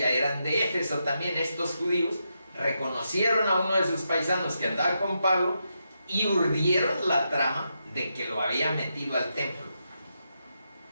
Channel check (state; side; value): inverted; both; correlation -0.84